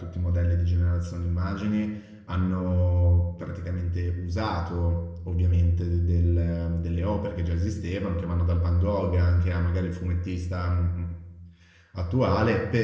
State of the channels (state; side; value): identical; both; correlation 1.00